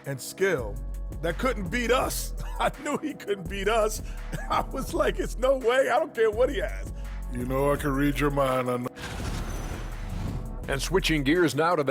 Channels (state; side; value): identical; both; correlation 1.00